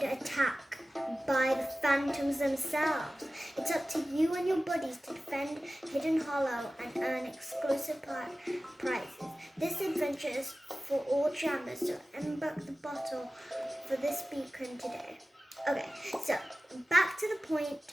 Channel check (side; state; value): both; normal; correlation 0.96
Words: attack by the Phantoms themselves. It's up to you and your buddies to defend Hidden Hollow and earn exclusive prizes. This adventure is for all jammers, so embark the battle for this beacon today. Okay, so back to the point